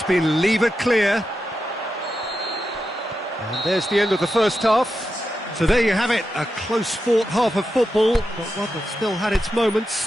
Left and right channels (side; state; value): both; normal; correlation 0.88